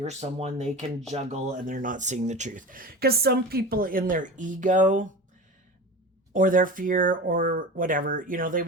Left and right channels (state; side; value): normal; both; correlation 0.31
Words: someone they can juggle, and they're not seeing the truth. Because some people in their ego or their fear or whatever, they